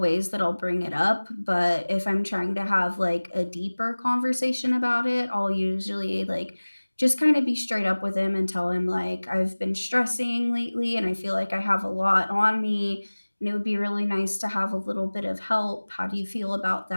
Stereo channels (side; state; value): both; inverted; correlation -1.00